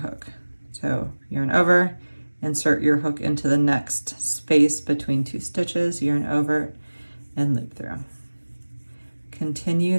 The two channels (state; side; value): inverted; both; correlation -1.00